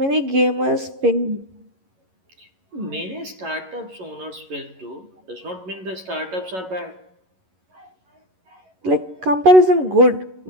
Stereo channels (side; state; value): left; late; 11 ms